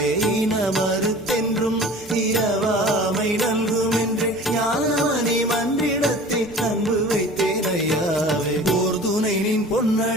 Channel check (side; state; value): both; normal; correlation 0.42